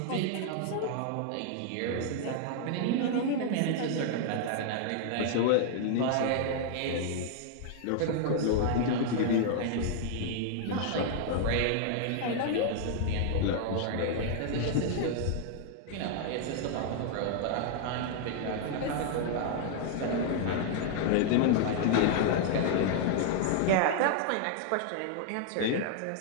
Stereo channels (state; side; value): different; both; correlation 0.00